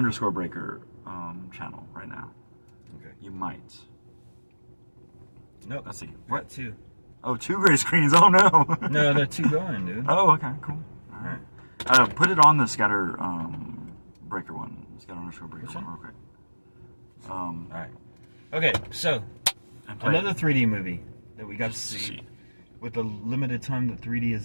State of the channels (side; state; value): both; inverted; correlation -1.00